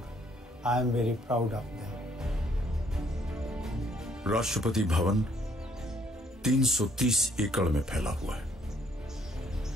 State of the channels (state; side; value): normal; both; correlation 0.66